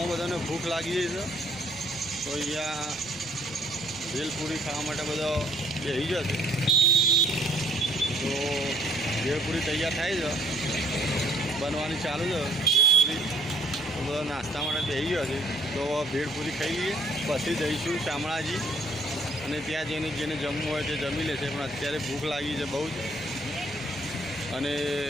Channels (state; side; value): noise; left; rumble, 23 dB below the sound